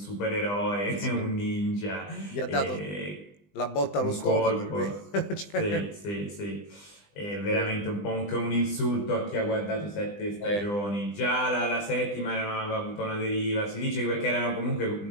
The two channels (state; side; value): late; right; 20 ms